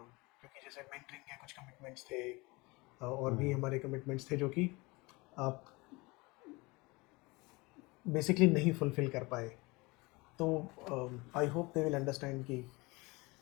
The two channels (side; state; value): right; quieter; 24.5 dB